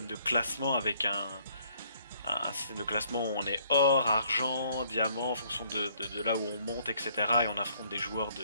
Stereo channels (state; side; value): inverted; both; correlation -0.64